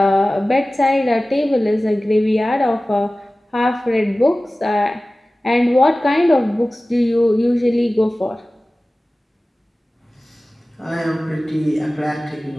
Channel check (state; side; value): normal; both; correlation 0.97